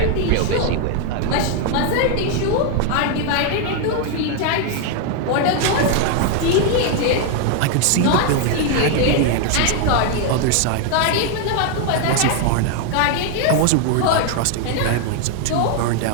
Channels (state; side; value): different; both; correlation 0.00